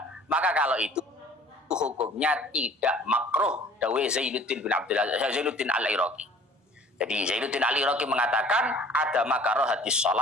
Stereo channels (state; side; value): normal; both; correlation 0.50